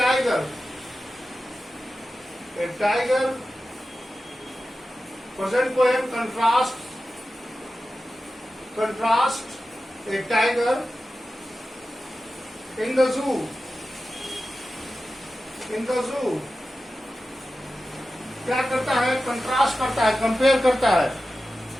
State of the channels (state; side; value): normal; both; correlation 0.93